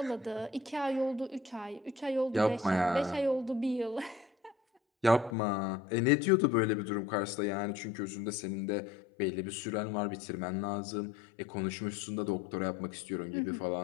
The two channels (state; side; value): drops out; right; at 5.4 s